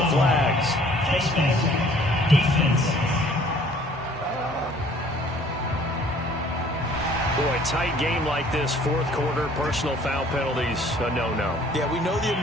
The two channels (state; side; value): normal; both; correlation 0.56